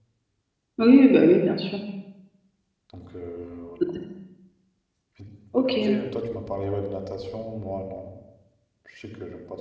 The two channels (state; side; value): identical; both; correlation 1.00